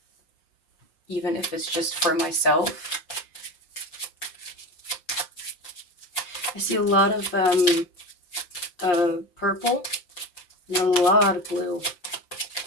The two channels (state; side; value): late; right; 5.8 ms